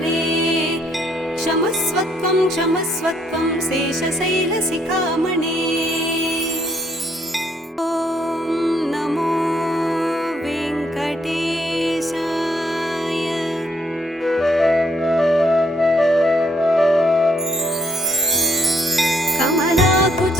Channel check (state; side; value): normal; both; correlation 0.70